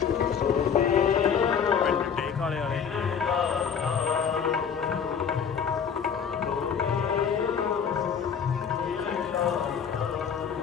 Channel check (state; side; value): quieter; right; 7.1 dB